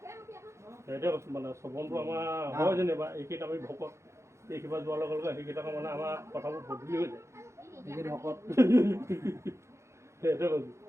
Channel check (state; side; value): late; left; 0.14 ms